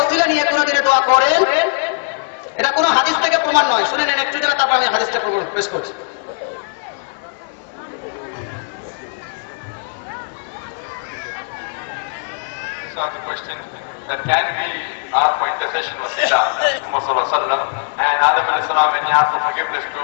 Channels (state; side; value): silent; right; 62 dB below the other